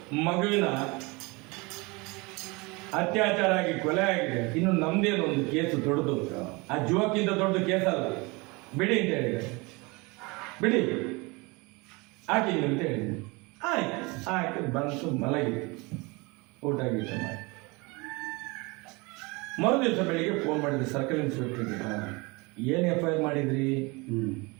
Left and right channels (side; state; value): left; quieter; 26.3 dB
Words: ಮಗುವಿನ ಅತ್ಯಾಚಾರ ಆಗಿ ಕೊಲೆ ಆಗಿದೆ, ಇನ್ನು ನಮ್ದೇನು ಒಂದು ಕೇಸು ದೊಡ್ಡದು, ಆ ಜುವಕ್ಕಿಂತ ದೊಡ್ಡ ಕೇಸ್ ಅಲ್ಲ, ಬಿಡಿ ಅಂತ ಹೇಳಿದೆ. ಬಿಡಿ ಹಾಕಿದ್ವಿ ಅಂತ ಹೇಳಿದೆ. ಆಯ್ತು, ಆಯ್ತು, ಬಂತು, ಮಲಗಿದೆ, ಊಟ ಗೀಟ ಮಾಡಿ. ಮರುದಿವಸ ಬೆಳಿಗ್ಗೆ ಫೋನ್ ಮಾಡಿದ್ರಿ ಸರ್ಕಲ್ ಇನ್ಸ್ಪೆಕ್ಟರ್ಗೆ, ಏನು FIR ಮಾಡಿದ್ರಿ?